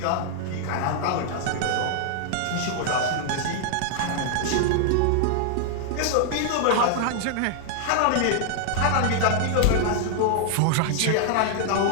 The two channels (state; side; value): different; both; correlation 0.00